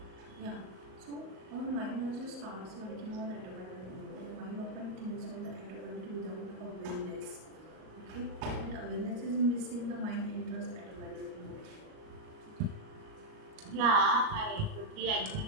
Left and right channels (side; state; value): left; late; 38 ms